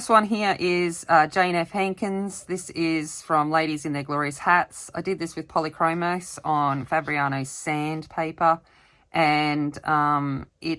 one here is Jane F. Hankins. This is from Ladies in Their Glorious Hats. I did this with Polychromos on Fabriano's sandpaper, and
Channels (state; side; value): identical; both; correlation 1.00